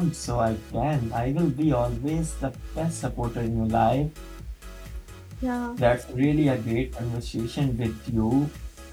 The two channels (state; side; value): identical; both; correlation 1.00